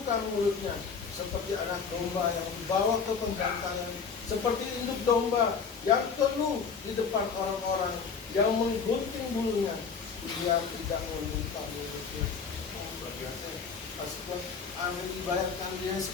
mulutnya, seperti anak domba yang dibawa ke pembangkangan, seperti induk domba yang keluh di depan orang-orang yang menggunting bulunya. Dia tidak membuka mulutnya. Luar biasa. Pasti Amin dibayarkan dia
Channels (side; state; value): right; quieter; 5.8 dB